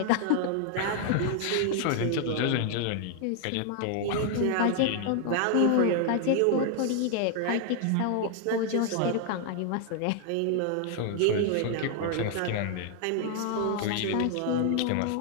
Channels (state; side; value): different; both; correlation 0.00